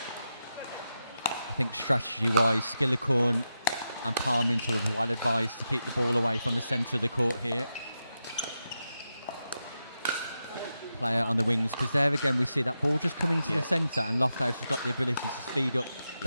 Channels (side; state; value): both; inverted; correlation -0.88